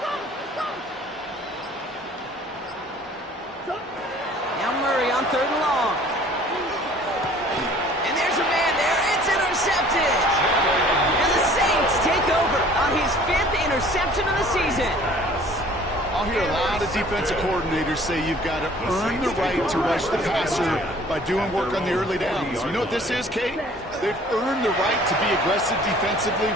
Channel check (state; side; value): normal; both; correlation 0.52